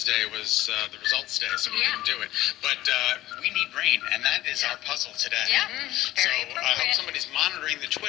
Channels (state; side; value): quieter; right; 15.6 dB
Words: was the results day, so we didn't do it. But we need rain, and that is our puzzle today. Yeah. So I hope somebody's monitoring the